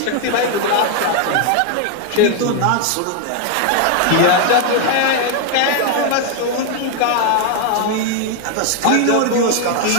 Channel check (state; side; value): different; both; correlation 0.01